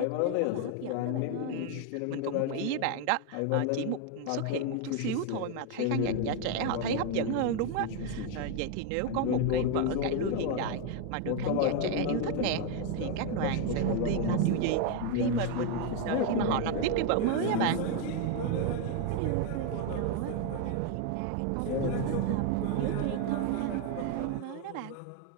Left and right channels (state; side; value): different; both; correlation 0.01